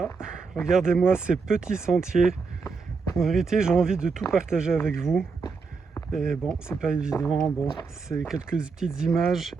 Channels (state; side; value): quieter; left; 4.8 dB